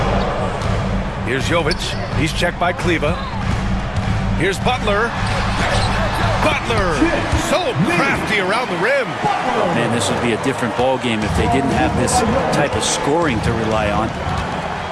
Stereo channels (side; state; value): both; identical; correlation 1.00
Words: Here's Jovic. He's checked by Kleba. Here's Butler. Butler, so crafty around the rim. Man, this would be a different ball game if they didn't have this type of scoring to rely on.